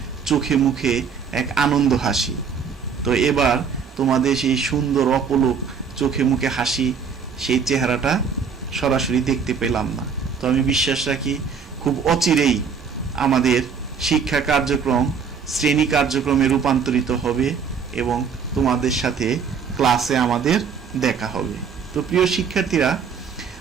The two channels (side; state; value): left; quieter; 6.2 dB